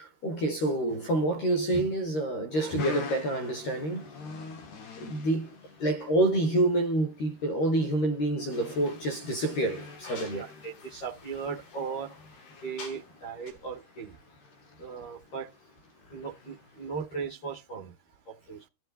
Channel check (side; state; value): right; late; 13 ms